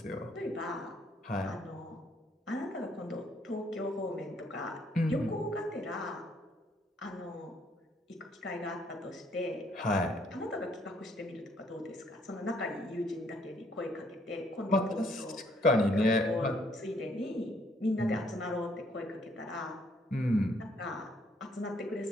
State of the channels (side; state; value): both; normal; correlation 0.67